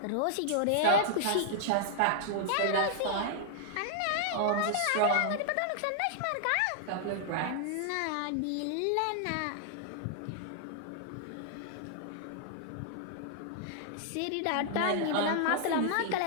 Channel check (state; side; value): different; both; correlation -0.01